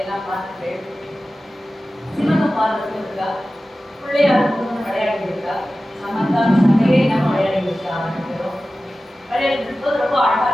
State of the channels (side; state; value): both; normal; correlation 0.95